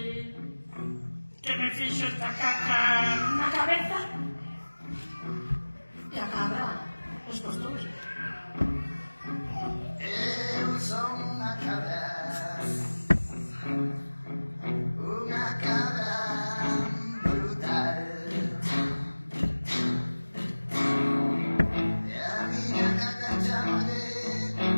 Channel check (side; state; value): both; inverted; correlation -1.00